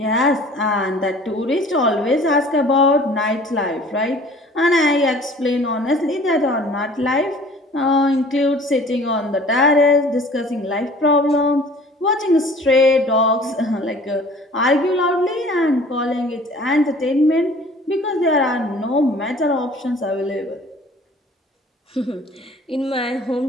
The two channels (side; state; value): both; normal; correlation 0.49